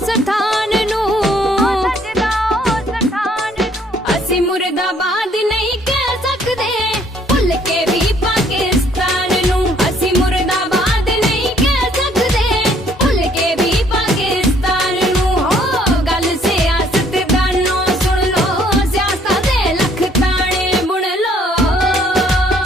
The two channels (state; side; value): normal; both; correlation 0.63